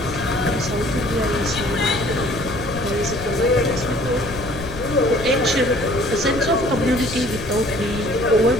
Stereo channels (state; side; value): noise; left; rumble, 10 dB below the sound